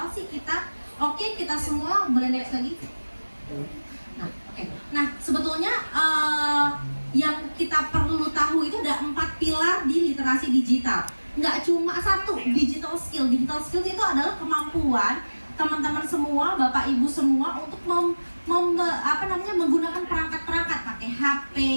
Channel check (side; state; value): both; inverted; correlation -1.00